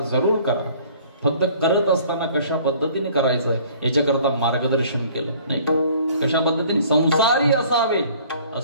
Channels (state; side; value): inverted; both; correlation -0.53